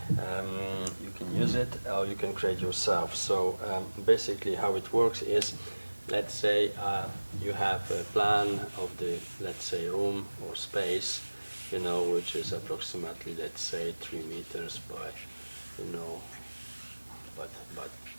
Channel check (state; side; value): inverted; both; correlation -1.00